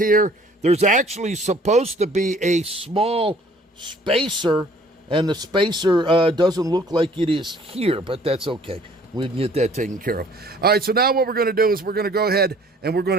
There's actually supposed to be a small spacer, and the spacer doesn't look like it is here, but that's okay. We can get that taken care of. All right, so now what we're going to do is we're going to go ahead and we're going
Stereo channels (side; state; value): both; normal; correlation 0.55